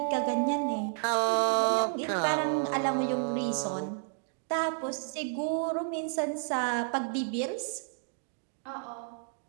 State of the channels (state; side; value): silent; left; digital silence